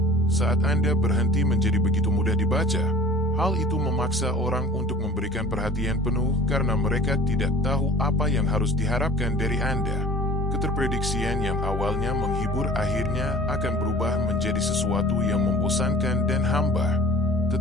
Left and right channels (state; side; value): normal; both; correlation 0.46